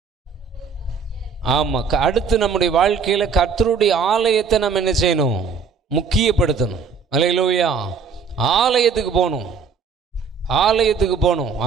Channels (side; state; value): left; quieter; 5.6 dB